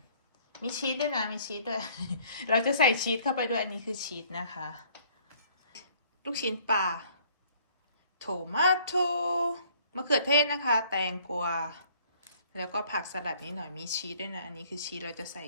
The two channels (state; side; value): inverted; both; correlation -0.58